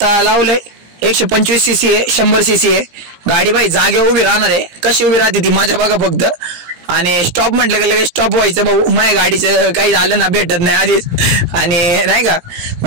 लावलंय 125 cc आहे, 100 cc आहे गाडी. बाई जागेवर उभी राहणार आहे, कशी उभी राहते ती माझ्या बघा फक्त. आणि स्टॉप म्हटलं की लगेच स्टॉप व्हायचं भाऊ. माझ्या गाडीचं काही झालं ना भेटत नाही आधीच, आणि नाही का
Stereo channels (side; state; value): left; late; 17 ms